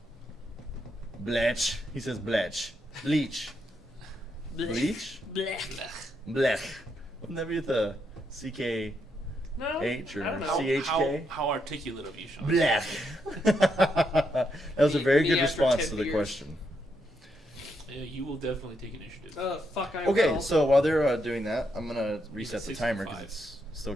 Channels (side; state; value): both; normal; correlation 0.79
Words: Bletch. He says Bletch. Bleach. Bleach? Blech. Blech. Wouldn't that be with the CK? No, H or I don't know. CHK? How articulate of you, Sean. Blech. That was a very Me good after response 10 to the beers. question. Yeah, you will definitely take initiative. Fuck, I Okay, will. so while they're doing that, I'm gonna reset the 65. timer because it's still